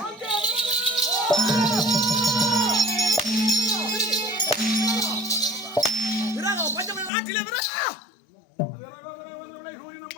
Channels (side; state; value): right; drops out; at 7.1 s